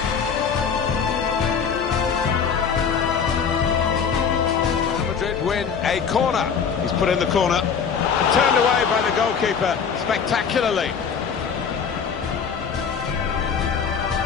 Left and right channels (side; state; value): right; quieter; 6.6 dB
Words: Real Madrid win a corner. He's put in the corner and turned away by the goalkeeper spectacularly.